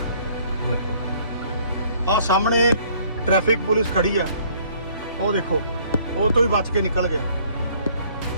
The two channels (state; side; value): inverted; both; correlation -0.59